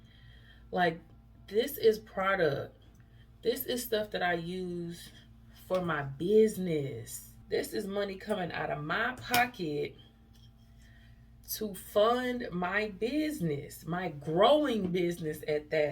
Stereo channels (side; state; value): both; identical; correlation 1.00